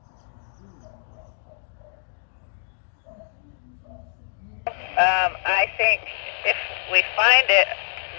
I think if we find it,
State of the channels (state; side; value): silent; right; digital silence